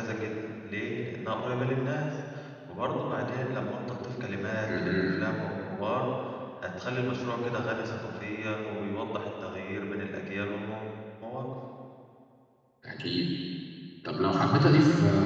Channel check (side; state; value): both; identical; correlation 1.00